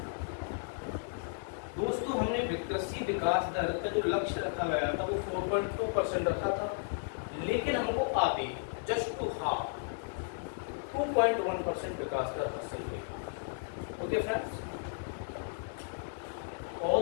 दोस्तों हमने कृषि विकास दर का जो लक्ष्य रखा गया था वो 4.2% रखा था, लेकिन हमको आगे जस्ट टू हाफ 2.1% विकास दर हासिल हुई। ओके फ्रेंड्स,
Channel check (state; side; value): silent; right; digital silence